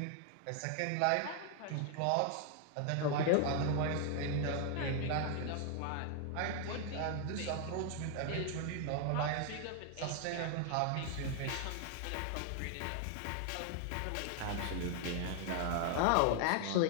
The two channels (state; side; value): different; both; correlation 0.00